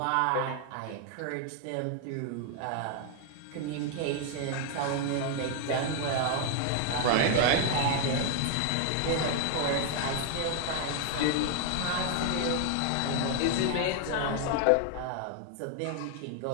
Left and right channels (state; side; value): different; both; correlation 0.00